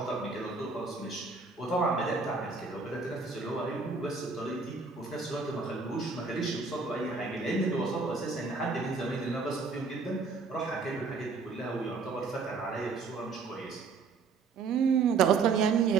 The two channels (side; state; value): left; quieter; 4.6 dB